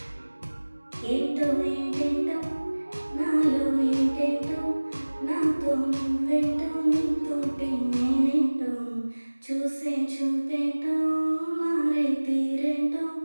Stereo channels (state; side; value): inverted; both; correlation -1.00